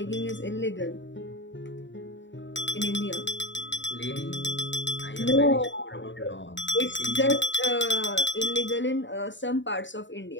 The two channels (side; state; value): right; late; 0.54 ms